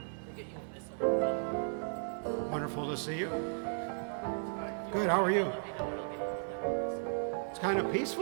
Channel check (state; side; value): silent; left; digital silence